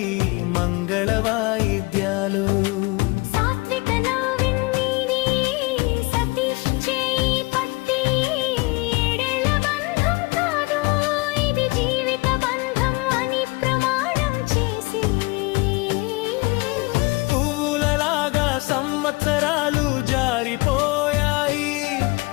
మంగళ వాయిద్యాలు. సంవత్సరాలు జారిపోయాయి,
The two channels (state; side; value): quieter; right; 25.0 dB